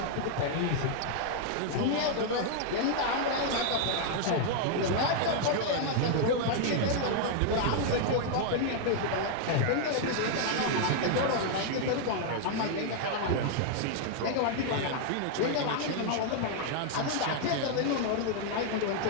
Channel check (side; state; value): both; different; correlation 0.00